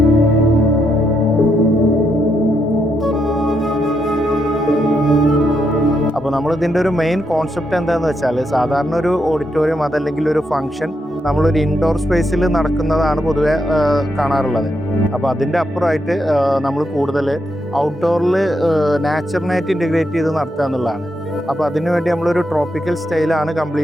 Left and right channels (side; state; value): both; normal; correlation 0.80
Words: അപ്പോൾ നമ്മളിതിൻ്റെ ഒരു മെയിൻ കോൺസെപ്റ്റ് എന്താണെന്ന് വെച്ചാൽ സാധാരണ ഒരു ഓഡിറ്റോറിയം അതല്ലെങ്കിൽ ഒരു ഫംഗ്ഷൻ നമ്മളൊരു ഇൻഡോർ സ്പേസിൽ നടക്കുന്നതാണ് പൊതുവെ കാണാറുള്ളത്. അപ്പോൾ അതിൻ്റെ അപ്പുറമായിട്ട് നമ്മൾ കൂടുതൽ ഔട്ട്ഡോറിൽ നാച്ചുറലായിട്ട് ഇൻറ്റഗ്രേറ്റ് ചെയ്ത് നടത്തുക എന്നുള്ളതാണ്. അപ്പോൾ അതിനുവേണ്ടി നമ്മളൊരു ട്രോപ്പിക്കൽ സ്റ്റൈലാണ്